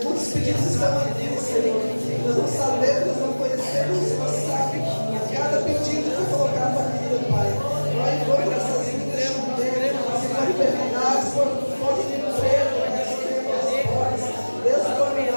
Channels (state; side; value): inverted; both; correlation -1.00